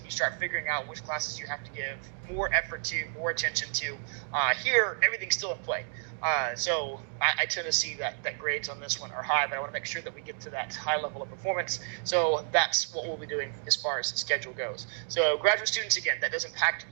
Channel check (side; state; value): left; silent; digital silence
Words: You start figuring out which classes you have to give more effort to, more attention to. Here, everything's still in play. So I tend to see that grades on this one are high, but I want to make sure that we get to that high level of performance. So that's what we'll be doing as far as the schedule goes. So graduate students, again, that does impact